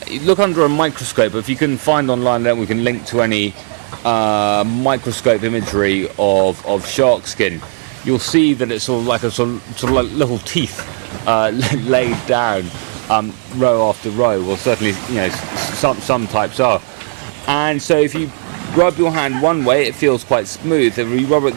under a microscope. If you can find online, then we can link to any microscope imagery of shark skin. You'll see that it's sort of like little teeth laid down row after row. Well, certainly, some types are. And so if you rub your hand one way, it feels quite smooth. If you rub it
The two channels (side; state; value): left; quieter; 35.8 dB